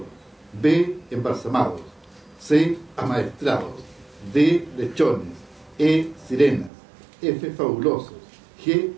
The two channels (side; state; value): left; drops out; at 6.7 s